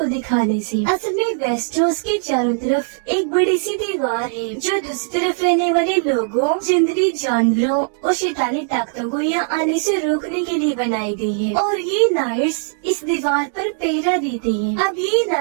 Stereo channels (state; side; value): silent; left; digital silence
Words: دکھانے سے. اصل میں ویسٹروس کے چاروں طرف ایک بڑی سی دیوار ہے جو دوسری طرف رہنے والے لوگوں، جنگلی جانوروں اور شیطانی طاقتوں کو یہاں آنے سے روکنے کے لیے بنائی گئی ہے، اور یہ نائٹس اس دیوار پر پہرا دیتے ہیں. اب یہ